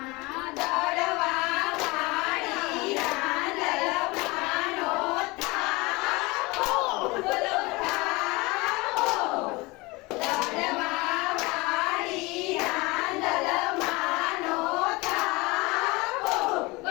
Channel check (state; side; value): quieter; right; 24.1 dB